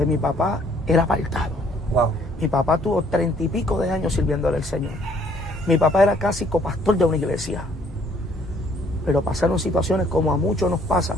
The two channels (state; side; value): normal; both; correlation 0.63